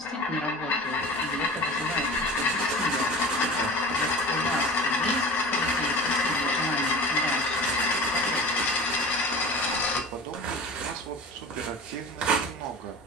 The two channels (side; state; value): both; normal; correlation 0.36